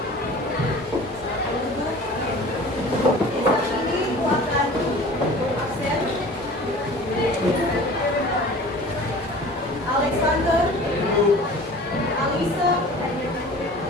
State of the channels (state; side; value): normal; both; correlation 0.42